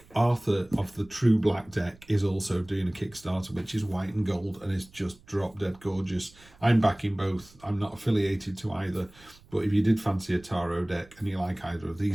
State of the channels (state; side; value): noise; right; rumble, 26 dB below the sound